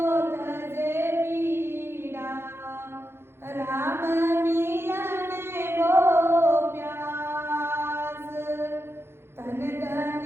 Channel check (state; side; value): late; left; 0.12 ms